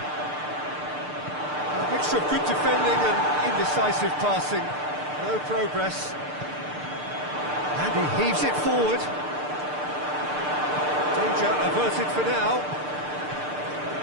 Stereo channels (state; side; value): late; left; 6.7 ms